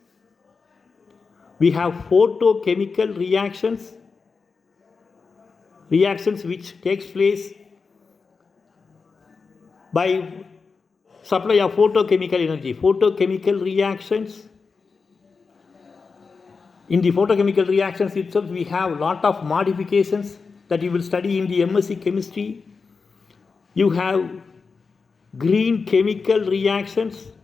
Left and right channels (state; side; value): quieter; right; 4.8 dB